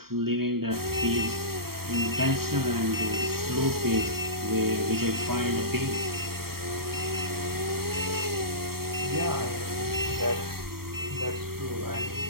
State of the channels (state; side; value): late; left; 0.94 ms